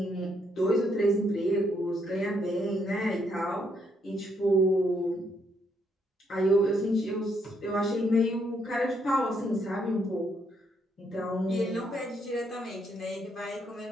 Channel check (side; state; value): both; normal; correlation 0.74